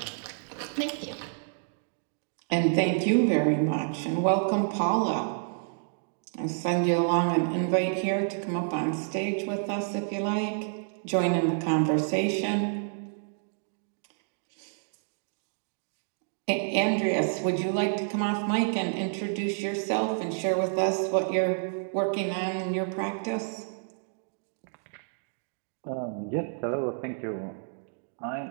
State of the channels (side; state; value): left; silent; digital silence